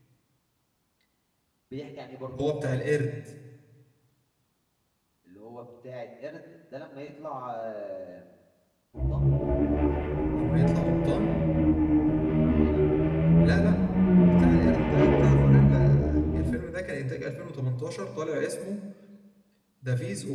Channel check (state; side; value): identical; both; correlation 1.00